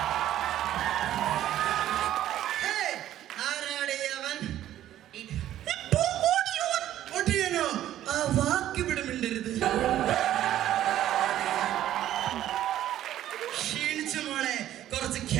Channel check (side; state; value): left; quieter; 12.5 dB